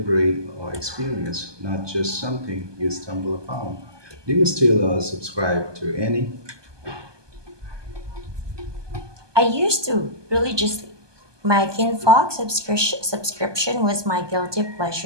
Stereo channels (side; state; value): left; late; 1.2 ms